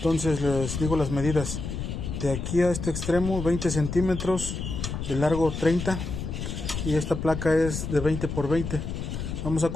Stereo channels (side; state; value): left; noise; rumble, 5 dB below the sound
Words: les digo las medidas. De aquí a este extremo 20 centímetros, de largo 30, y esta placa es de 20 por 20. Vamos a